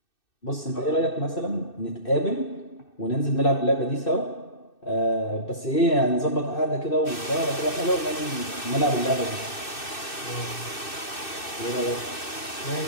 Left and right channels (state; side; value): late; right; 2.6 ms